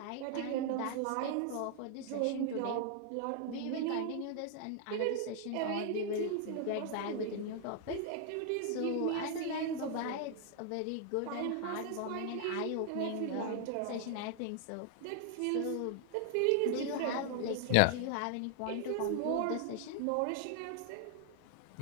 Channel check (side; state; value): both; different; correlation 0.00